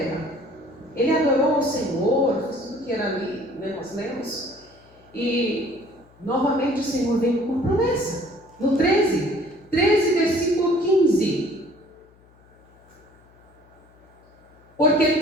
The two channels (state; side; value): noise; left; hum, 29 dB below the sound